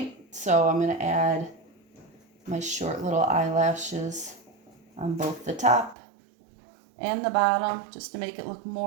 so I'm going to add my short little eyelashes on both the top and the bottom just to make it look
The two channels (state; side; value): drops out; left; at 6.0 s